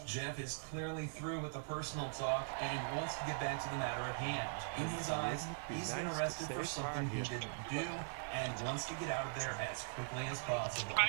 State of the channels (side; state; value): left; silent; digital silence